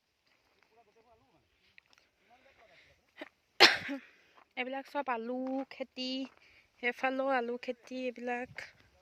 এইবিলাক চব আলু খেতি, সেইফালেও আলু খেতি। এইবিলাক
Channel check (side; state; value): both; identical; correlation 1.00